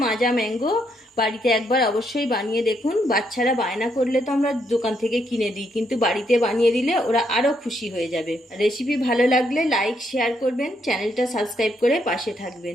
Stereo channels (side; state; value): both; normal; correlation 0.75